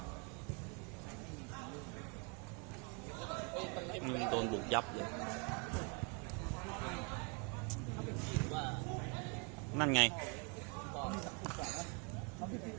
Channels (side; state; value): left; quieter; 33.9 dB